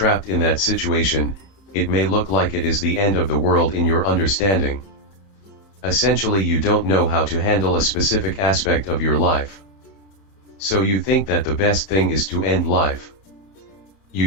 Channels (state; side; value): late; right; 31 ms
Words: in that situation, it may look like it is the end of the world in your understanding. Essentially, you don't know how to handle a specific aspect of your life. So you think that the best thing is to end life.